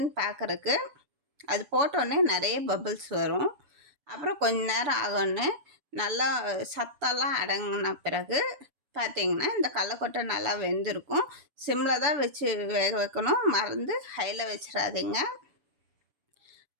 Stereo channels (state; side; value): late; left; 6.8 ms